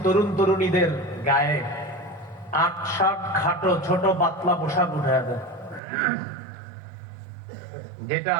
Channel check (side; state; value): left; drops out; at 5.8 s